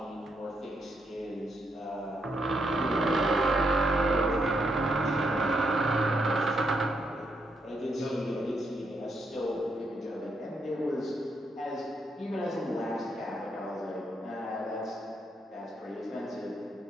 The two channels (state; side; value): normal; both; correlation 0.78